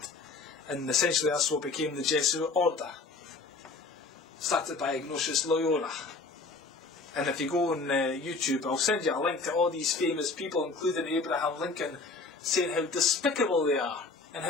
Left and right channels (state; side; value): quieter; right; 3.9 dB